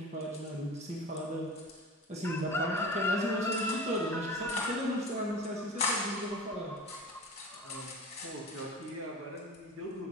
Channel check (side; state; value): both; normal; correlation 0.36